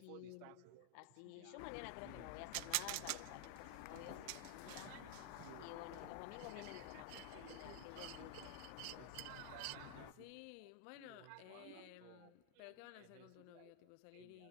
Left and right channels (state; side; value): different; both; correlation 0.00